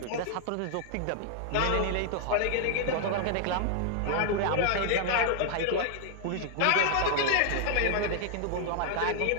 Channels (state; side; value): different; both; correlation 0.00